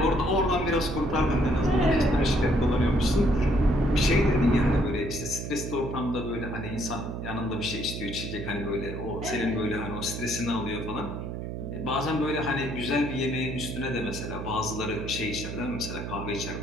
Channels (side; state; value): right; noise; hum, 6 dB below the sound